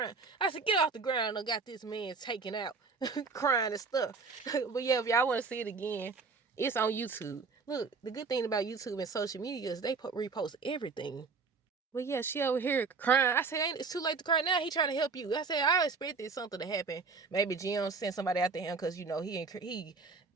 I said, get off the ground. I got this man taken out, crying and stuff. But yeah, if y'all want to see it again, it's on YouTube. Look, the good thing about YouTube and social media is they repost everything. But yeah, she over here crying. I said, it's too late to cry now. He trying to help you. I said, I expected something to happen. Maybe Jim sent somebody after him because, you know,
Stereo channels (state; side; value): quieter; left; 4.6 dB